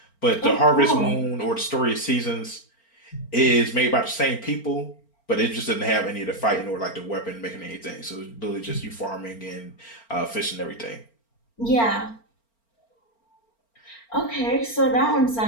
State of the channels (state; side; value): late; right; 4.4 ms